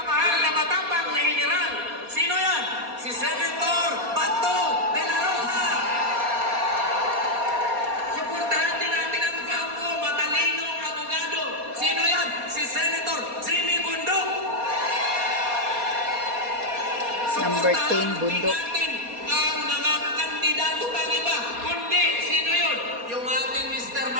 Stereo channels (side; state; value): left; late; 4.2 ms